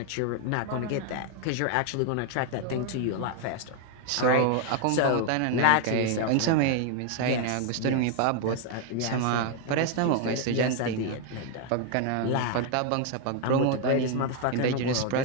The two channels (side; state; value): both; different; correlation 0.00